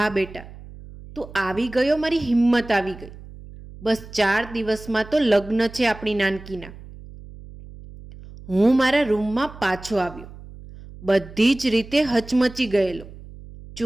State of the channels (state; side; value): noise; right; hum, 17 dB below the sound